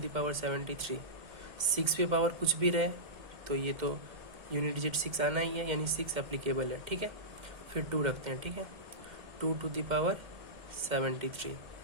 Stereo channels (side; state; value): left; late; 2.1 ms